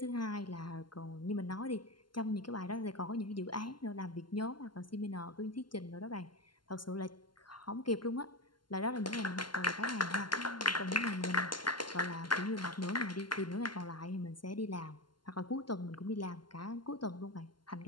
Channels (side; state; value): right; late; 0.71 ms